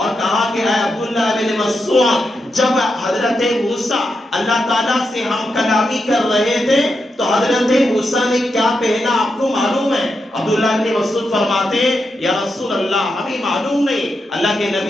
کہا کہ اے عبداللہ ابن مسعود، جب حضرت موسیٰ اللہ تعالیٰ سے ہم کلامی کر رہے تھے تو حضرت موسیٰ نے کیا پہنا آپ کو معلوم ہے؟ عبداللہ ابن مسعود فرماتے ہیں یا رسول اللہ ہمیں معلوم نہیں. اللہ کے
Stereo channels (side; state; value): both; normal; correlation 0.86